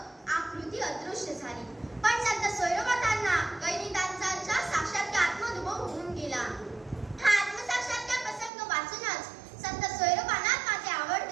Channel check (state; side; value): drops out; left; at 8.5 s